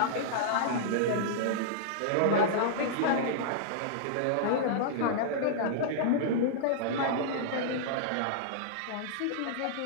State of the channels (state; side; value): different; both; correlation -0.02